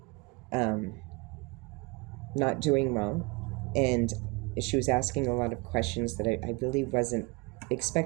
not doing well. And she was asking a lot of questions that I really wasn't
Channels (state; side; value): quieter; left; 27.7 dB